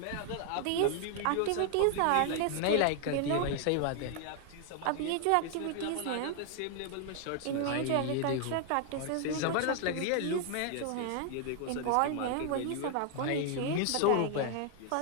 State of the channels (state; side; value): different; both; correlation 0.00